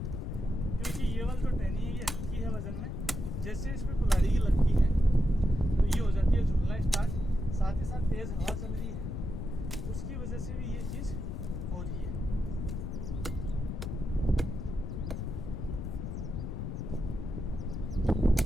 क्योंकि ये वाली जो टहनी है ये हल्की है वजन में, जैसे इस पे कुल्हाड़ी की लगती है तो ये हो जाती है झूलना स्टार्ट। साथ ही साथ तेज हवा चल रही है, उसकी वजह से भी ये चीज़ हो रही है।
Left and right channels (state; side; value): noise; left; rumble, 4 dB below the sound